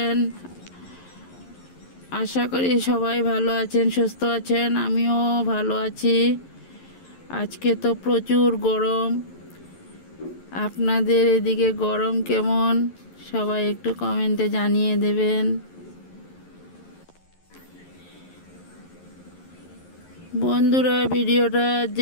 আশা করি সবাই ভালো আছেন, সুস্থ আছেন। আমিও ভালো আছি। আজকে তো প্রচুর গরম। আপনাদের এদিকে গরম কেমন? সবাই একটু কমেন্টে জানিয়ে দেবেন। বন্ধুরা, ভিডিওটা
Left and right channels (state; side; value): late; right; 11 ms